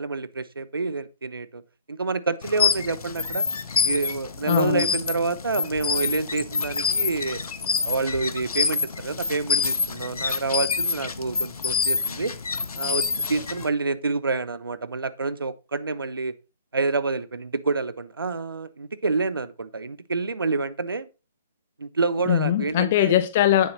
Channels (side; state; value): both; inverted; correlation -0.51